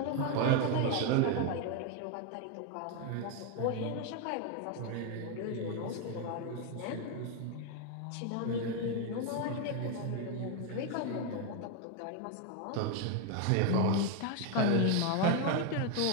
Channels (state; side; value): different; both; correlation 0.01